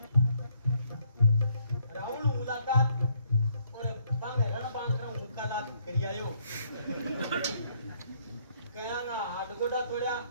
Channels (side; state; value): both; inverted; correlation -0.68